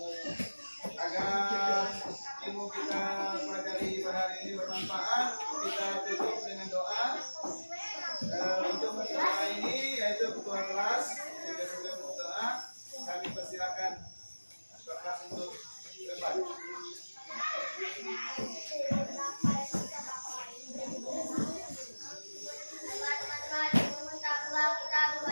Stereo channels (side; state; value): both; inverted; correlation -1.00